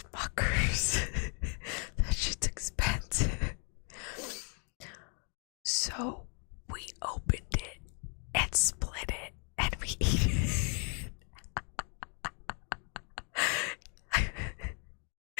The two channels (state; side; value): quieter; right; 39.6 dB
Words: That shit's expensive. So we opened it and split it, and we ate it.